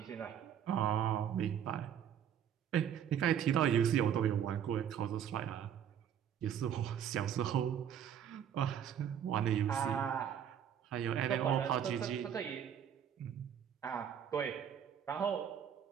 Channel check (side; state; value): left; quieter; 9.0 dB